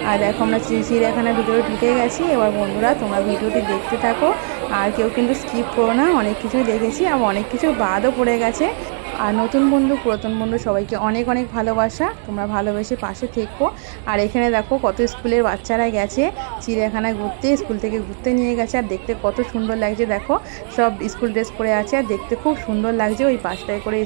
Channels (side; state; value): left; silent; 56 dB below the other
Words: আর দেখো আমরা চিড়িয়াখানার ভিতরে ঢুকে গেছি। এবার বন্ধুরা তোমরা ভিডিওটি দেখতে থাকো, আর কেউ কিন্তু স্কিপ করো না। অনেক কিছুই দেখেছি, আর অনেক কিছু বাদও পড়ে গেছে। আর নতুন বন্ধু পুরাতন বন্ধু সবাইকে অনেক অনেক ভালোবাসা, তোমরা ভালোবেসে পাশে থেকো। আর এখানে দেখো কত স্কুলের বাচ্চারা গেছে চিড়িয়াখানায় ঘুরতে, স্কুল থেকে ঘুরতে নিয়ে গেছে। আর দেখতে কত সুন্দর লাগছে, দেখো সব স্কুল ড্রেস পরে আছে, আর দেখতে খুব সুন্দর লাগছে। ওই পাশটায় করে